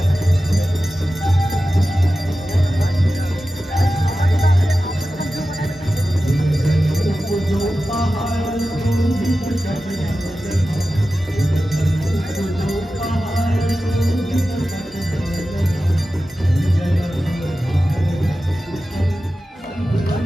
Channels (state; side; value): normal; both; correlation 0.94